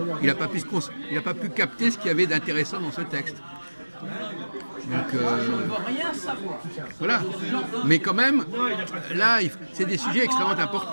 il n'a pas pu capter ce qu'il y avait d'intéressant dans ce texte. Donc voilà, mais quand même, là, c'est des sujets extrêmement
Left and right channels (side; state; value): both; inverted; correlation -1.00